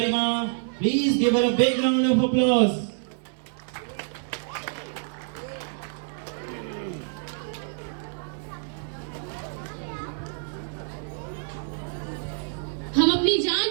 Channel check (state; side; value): silent; left; 60 dB below the other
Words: Please give her a big round of applause. हम अपनी जान